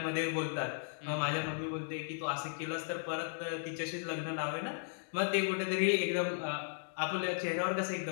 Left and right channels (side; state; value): right; silent; digital silence